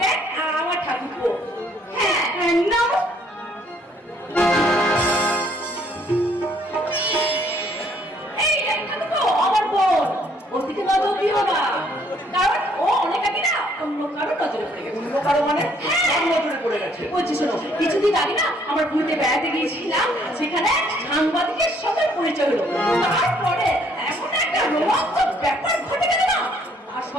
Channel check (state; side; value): normal; both; correlation 0.65